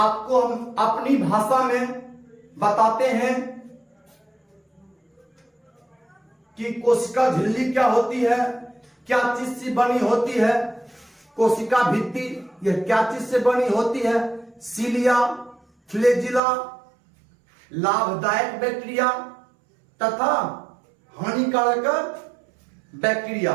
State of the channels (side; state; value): left; drops out; at 16.4 s